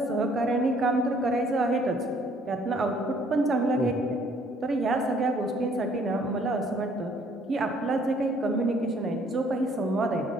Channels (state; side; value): normal; both; correlation 0.62